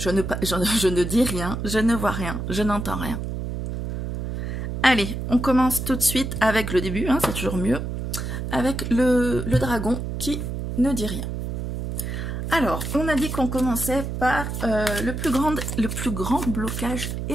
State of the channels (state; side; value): noise; right; hum, 4 dB below the sound